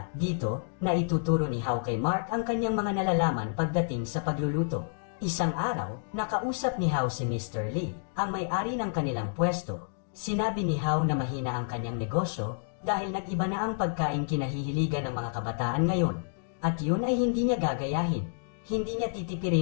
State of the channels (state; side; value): silent; right; digital silence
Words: Dito, na ituturo ni Hao kay Mark ang kanyang mga nalalaman pagdating sa pagluluto. Isang araw, nakausap ni Hao si Mr. Lee, ang may-ari ng kanilang pwesto. Sinabi ni Hao na mahina ang kanyang negosyo dahil nag-iba na ang pagkain kinahihiligan ng mga kabataan ngayon. At yun ay hindi niya gagayahin. Hindi niya